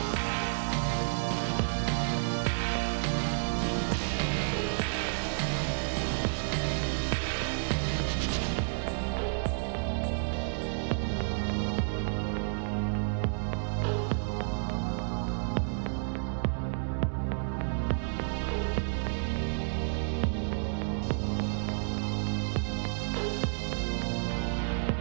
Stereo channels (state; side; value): silent; left; digital silence